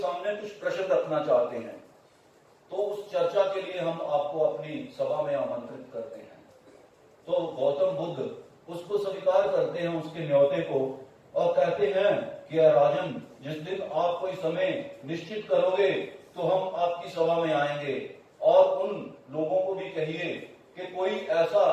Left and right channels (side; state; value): both; identical; correlation 1.00